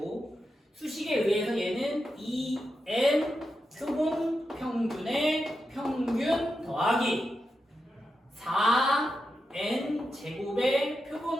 수식에 의해서 얘는 2n 표본 평균의 평균 더하기 4n 제곱의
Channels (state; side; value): normal; both; correlation 0.88